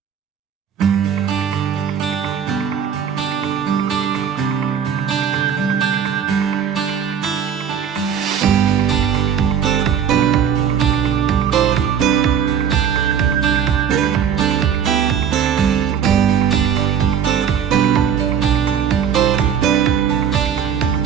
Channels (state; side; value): quieter; left; 8.0 dB